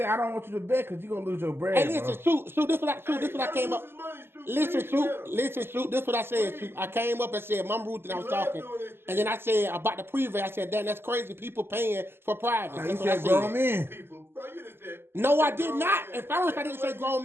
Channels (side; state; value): left; late; 0.11 ms